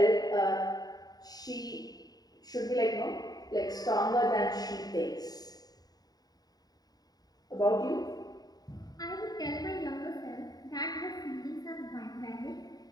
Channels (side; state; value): right; late; 0.19 ms